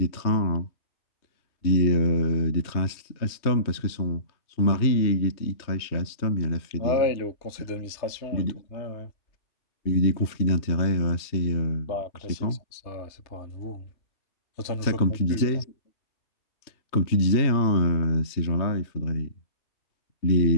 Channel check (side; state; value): right; late; 3.2 ms